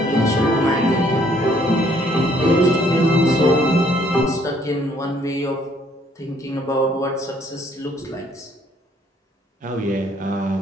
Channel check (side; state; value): both; normal; correlation 0.65